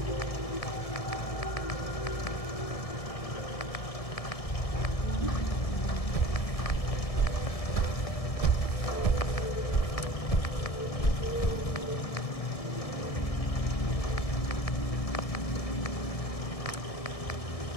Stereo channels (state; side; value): late; right; 1.7 ms